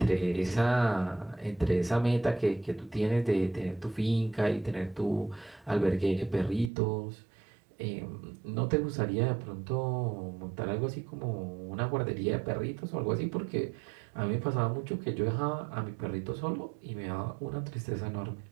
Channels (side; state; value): left; drops out; at 6.7 s